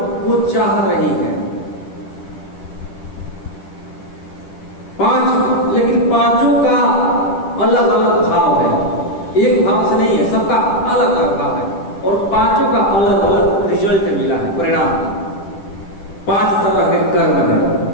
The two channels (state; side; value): late; right; 10 ms